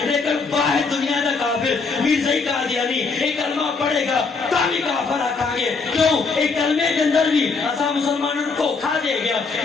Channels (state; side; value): quieter; right; 4.5 dB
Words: لیکن واحد دنیا دا کافر مرزائی قادیانی ایک کلمہ پڑھے گا تاکہ کافر آکھاں گے. کیوں ایک کلمے کے اندر بھی اسا مسلمانوں کو دھوکا دے گیا.